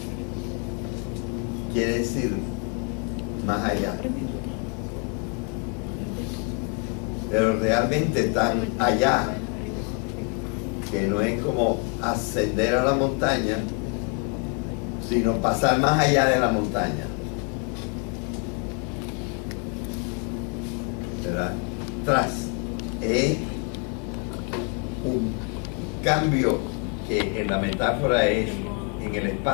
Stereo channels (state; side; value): quieter; right; 38.3 dB